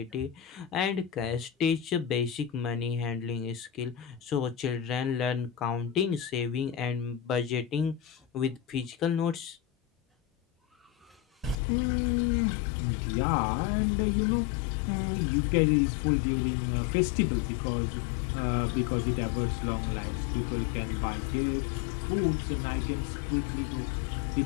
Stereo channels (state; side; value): drops out; right; at 11.6 s